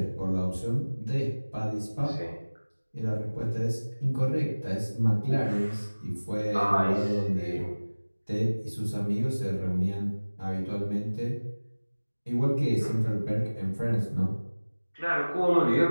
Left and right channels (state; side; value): inverted; both; correlation -1.00